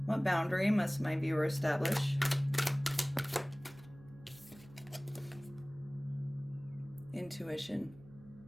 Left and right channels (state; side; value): noise; right; hum, 21 dB below the sound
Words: What boundary must my viewer establish? Intuition.